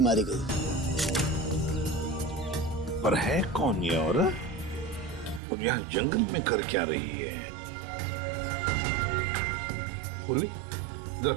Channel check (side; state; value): left; drops out; at 5.4 s